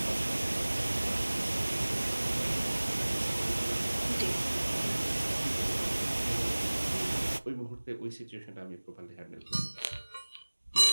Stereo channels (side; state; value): both; inverted; correlation -1.00